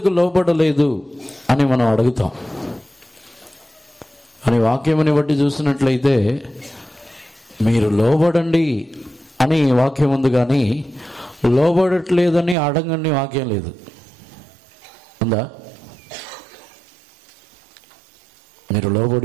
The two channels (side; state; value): left; drops out; at 12.6 s